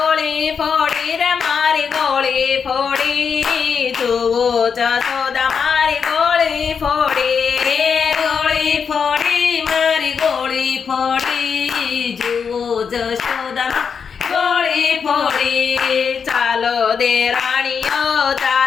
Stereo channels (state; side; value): quieter; right; 6.3 dB